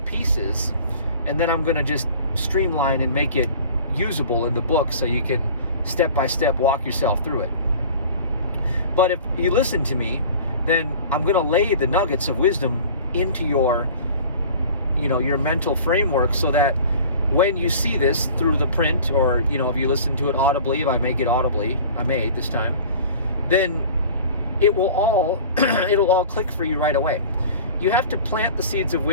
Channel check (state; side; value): inverted; both; correlation -0.42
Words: pieces, and then I'm going to just streamline and make it usable in the book so you can step by step walk yourself through it. But if you listen to me, then I'm going to lay the nuggets of wisdom into your, your mental framework, so that when you see this through the print, or, if you listen to it audibly, if I make it audibly, I may this time, then it will all, it'll all click for you right away. You have to plant the seeds of